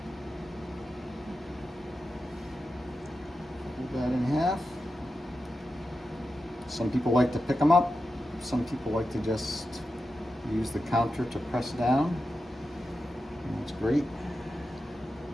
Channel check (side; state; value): both; normal; correlation 0.90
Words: Fold that in half. Some people like to pick them up. Some people like to just use the counter to press down. And that's great.